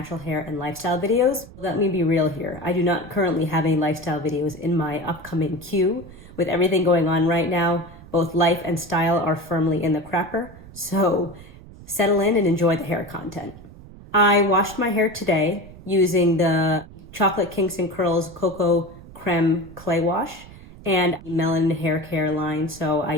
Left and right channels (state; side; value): noise; right; rumble, 19 dB below the sound